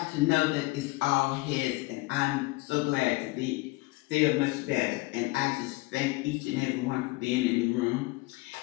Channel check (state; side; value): quieter; right; 23.0 dB